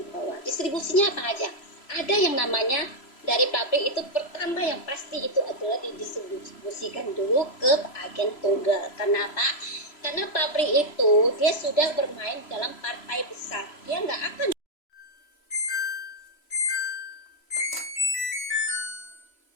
bawah. Distribusinya apa aja? Ada yang namanya dari pabrik itu, pertama yang pasti itu adalah didistribusikan dulu ke agen tunggal. Kenapa? Karena pabrik itu dia sudah bermain dalam partai besar, dia nggak akan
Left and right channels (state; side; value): late; right; 3.0 ms